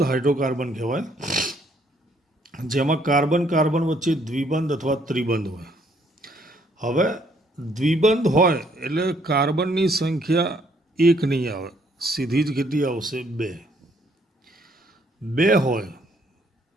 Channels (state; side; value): normal; both; correlation 0.67